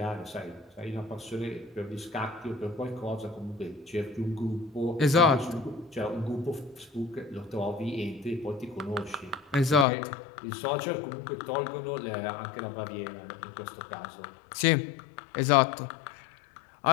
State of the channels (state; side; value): drops out; right; at 9.9 s